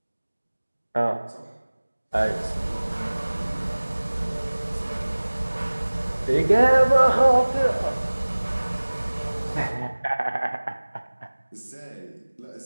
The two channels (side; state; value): both; inverted; correlation -1.00